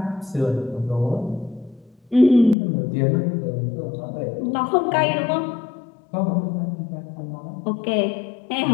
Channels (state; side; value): drops out; right; at 2.6 s